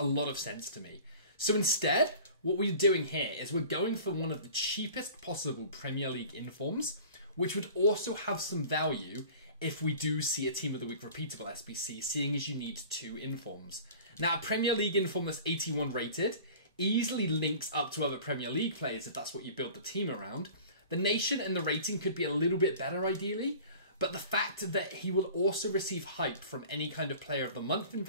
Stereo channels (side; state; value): both; inverted; correlation -0.43